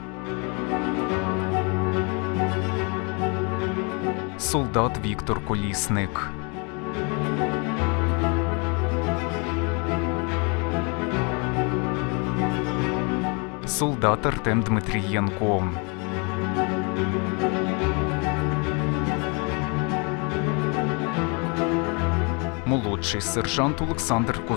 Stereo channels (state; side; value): quieter; right; 33.4 dB